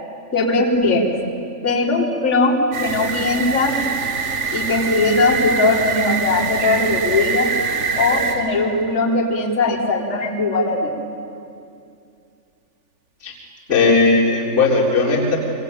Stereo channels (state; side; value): late; left; 3.4 ms